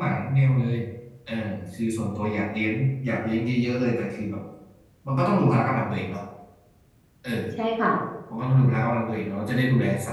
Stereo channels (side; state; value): both; identical; correlation 1.00